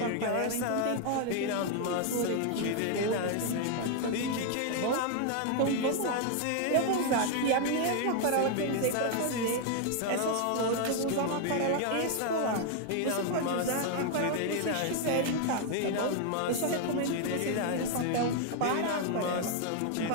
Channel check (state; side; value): different; both; correlation 0.00